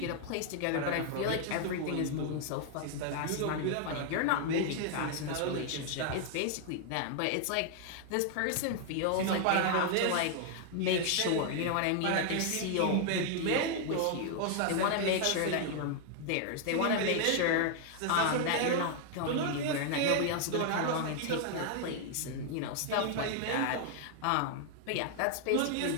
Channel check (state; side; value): different; both; correlation 0.00